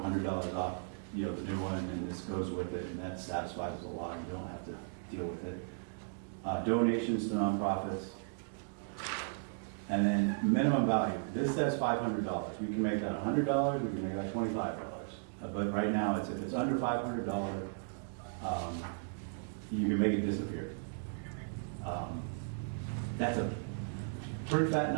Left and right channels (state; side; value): silent; left; digital silence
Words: off, you know, the new one, and this goes with it, and that satisfies a lot, you don't have to deal with it. Donations to nonprofits. And then minimum value, this says $500. We can make that $100, we can make that $25. But right now, if it's under $500, you can make it disappear. That's a pretty fat